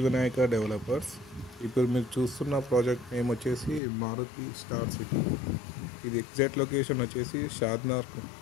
Vinayaka developers. ఇప్పుడు మీరు చూస్తున్న ప్రాజెక్ట్ నేమ్ వచ్చేసి మారుతి స్టార్ సిటీ. ఇది ఎగ్జాక్ట్ లొకేషన్ వచ్చేసి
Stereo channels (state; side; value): drops out; right; at 3.8 s